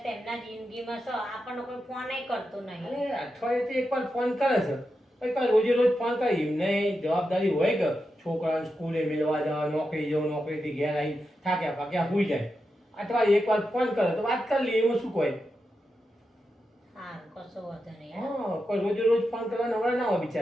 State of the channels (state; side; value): normal; both; correlation 0.88